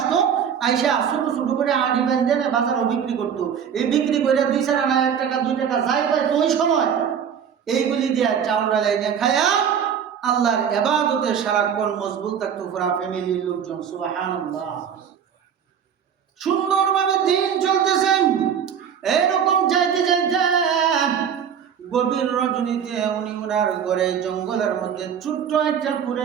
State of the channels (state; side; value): quieter; left; 7.9 dB